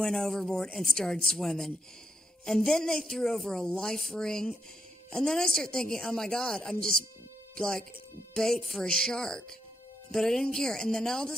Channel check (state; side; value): normal; both; correlation 0.80